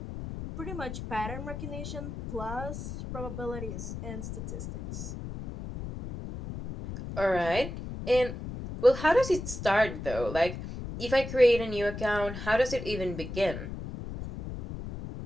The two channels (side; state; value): left; noise; rumble, 8 dB below the sound